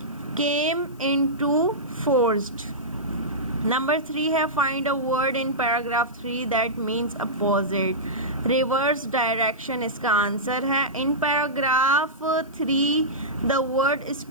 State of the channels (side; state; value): left; noise; hiss, 29 dB below the sound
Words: केम इनटू फोर्स्ड। नंबर 3 है, find a word in paragraph 3 that means opposite, reverse direction इसका answer है। In paragraph 3 the word